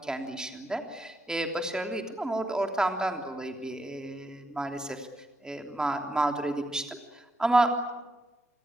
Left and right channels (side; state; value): both; normal; correlation 0.80